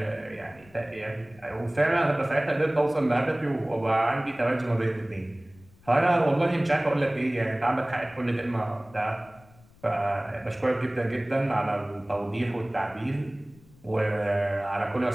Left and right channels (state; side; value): noise; left; rumble, 26 dB below the sound